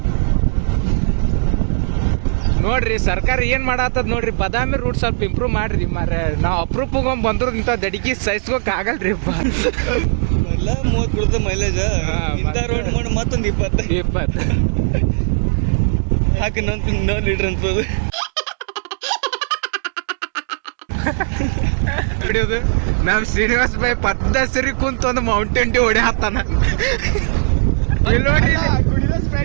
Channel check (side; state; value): left; silent; digital silence